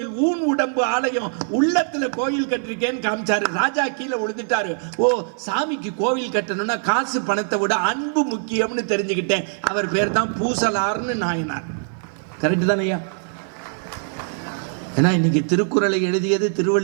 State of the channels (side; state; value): left; silent; 55 dB below the other